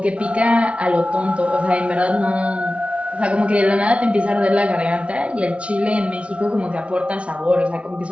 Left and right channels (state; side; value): late; left; 0.061 ms